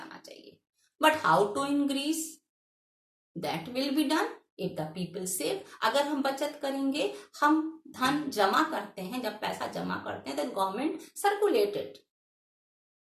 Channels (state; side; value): identical; both; correlation 1.00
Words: चाहिए. But how to increase? That will be done if the people save. अगर हम बचत करेंगे, हम धन जमा करते हैं, जब पैसा जमा करते हैं then government circulate it.